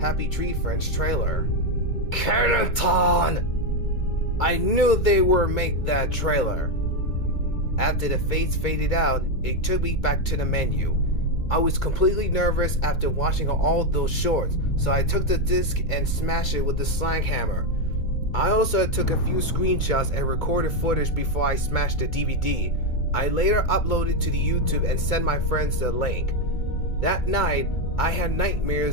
Happy Tree Friends trailer. Kennington! I knew they would make that trailer. After the fades faded out, it took me back to the menu. I was completely nervous after watching all those shorts, so I took the disc and smashed it with the slang hammer. I also took a few screenshots and recorded footage before I smashed the DVD. I later uploaded to the YouTube and sent my friends the link. That night, I had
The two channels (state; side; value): late; right; 2.3 ms